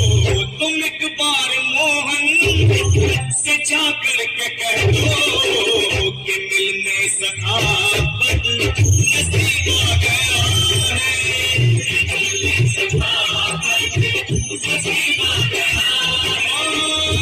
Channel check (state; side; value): identical; both; correlation 1.00